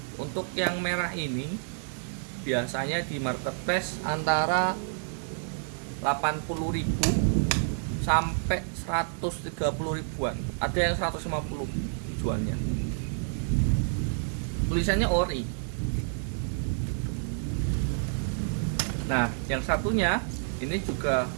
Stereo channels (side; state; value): left; silent; 59 dB below the other